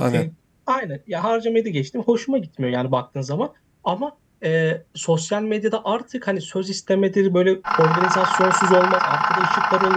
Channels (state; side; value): identical; both; correlation 1.00